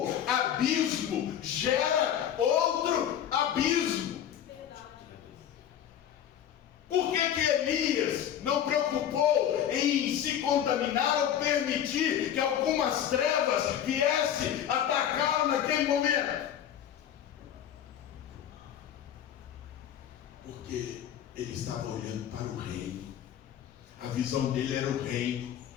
abismo, gera outro abismo. Por que Elias não preocupou em se contaminar ou permitir que algumas trevas viessem atacá-lo naquele momento? Porque ele estava olhando para o reino. A visão dele era o reino.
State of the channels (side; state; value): right; quieter; 10.0 dB